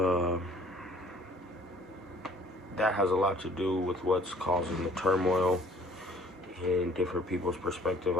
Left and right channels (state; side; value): normal; both; correlation 0.55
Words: that has a lot to do with what's causing the turmoil in different people's perspective.